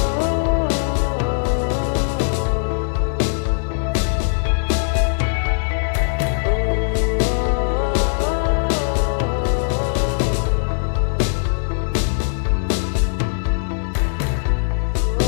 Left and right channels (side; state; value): right; silent; 63 dB below the other